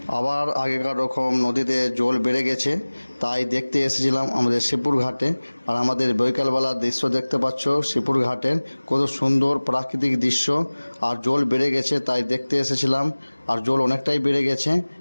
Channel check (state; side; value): inverted; both; correlation -1.00